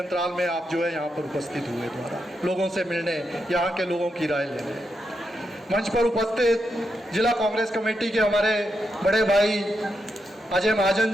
में आप जो है यहाँ पर उपस्थित हुए द्वारा लोगों से मिलने, यहाँ के लोगों की राय लेने। मंच पर उपस्थित जिला कांग्रेस कमेटी के हमारे बड़े भाई अजय महाजन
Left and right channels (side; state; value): both; normal; correlation 0.84